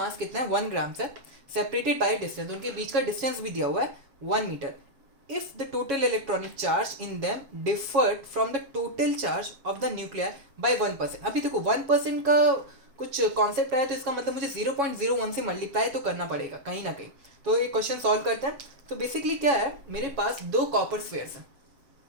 कितना है 1 ग्राम से, separated by distance. उनके बीच का डिस्टेंस भी दिया हुआ है 1 metre. If the total electronic charge in them differed from the total charge of the nuclear by 1%. अभी देखो 1% का कुछ कॉन्सेप्ट आया तो इसका मतलब मुझे 0.01 से मल्टीप्लाई तो करना पड़ेगा कहीं ना कहीं. तो ये क्वेश्चन सॉल्व करते हैं. तो बेसिकली क्या है, मेरे पास दो कॉपर स्फेयर्स हैं.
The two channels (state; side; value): late; left; 7.2 ms